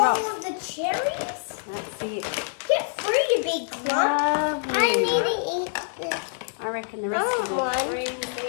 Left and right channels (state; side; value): silent; right; digital silence